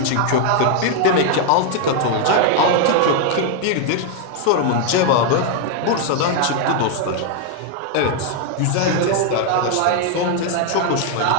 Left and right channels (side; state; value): both; different; correlation 0.00